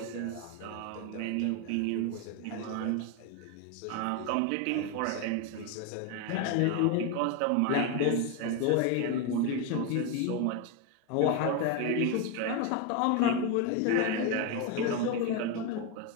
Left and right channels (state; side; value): different; both; correlation 0.02